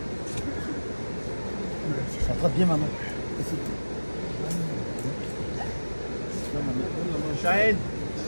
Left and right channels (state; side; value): inverted; both; correlation -1.00